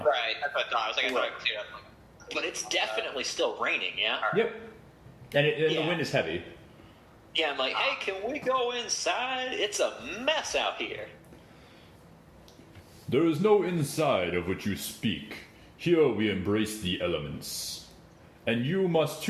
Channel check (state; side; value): identical; both; correlation 1.00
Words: Right, that's what I thought. I was like, I thought it cleared up. But it's definitely still raining. Yeah. Yep. And the Yeah. wind is heavy. Yeah. I'm like, hey, can we go inside? It's a mess out here. There is no inside of which you speak. Here we embrace the elements. And you must